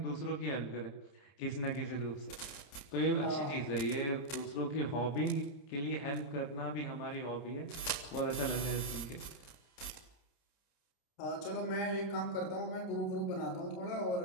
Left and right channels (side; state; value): right; late; 29 ms